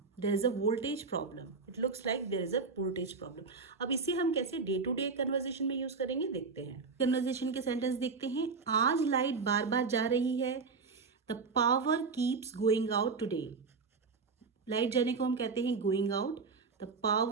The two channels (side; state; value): left; quieter; 4.7 dB